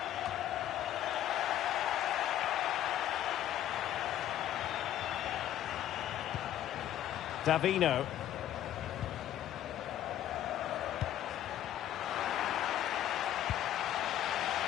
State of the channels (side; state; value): right; quieter; 11.8 dB